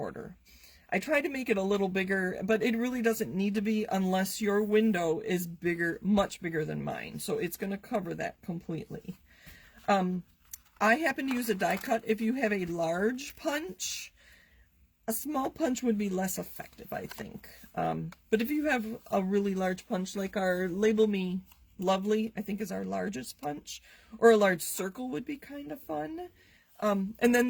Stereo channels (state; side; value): identical; both; correlation 1.00